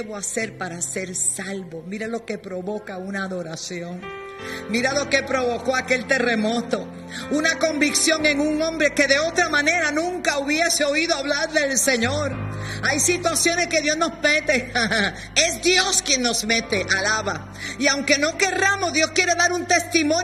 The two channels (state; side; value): identical; both; correlation 1.00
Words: hacer para ser salvo? Mira lo que provoca una adoración. Mira lo que provocó aquel terremoto. Una convicción en un hombre que de otra manera nunca hubiese oído hablar del Señor. Hay situaciones que Dios nos mete. Es Dios quien nos mete, alaba. Y aunque no querramos, Dios quiere dar un